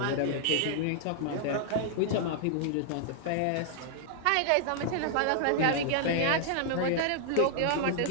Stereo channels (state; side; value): different; both; correlation -0.01